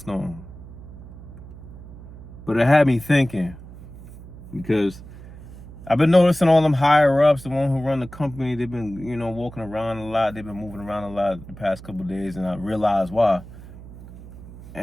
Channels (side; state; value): right; noise; hum, 16 dB below the sound